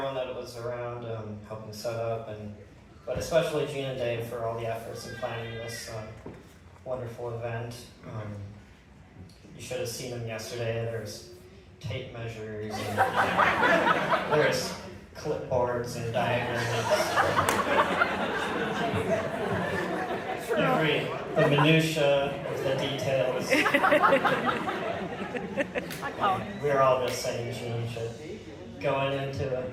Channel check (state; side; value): identical; both; correlation 1.00